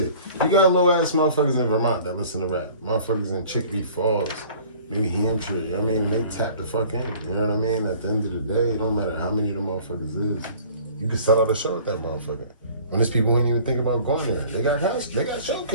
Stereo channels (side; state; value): both; inverted; correlation -0.49